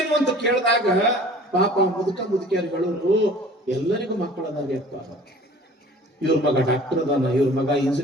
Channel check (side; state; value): both; normal; correlation 0.47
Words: ಅಂತ ಕೇಳಿದಾಗ ಪಾಪ ಮುದುಕಿಯರುಗಳು ಎಲ್ಲರಿಗೂ ಮಕ್ಕಳದಾಗ್ಯಪ್ಪ. ಇವ್ರ ಮಗ ಡಾಕ್ಟರ್ ಅದಾನ, ಇವ್ರ ಮಗ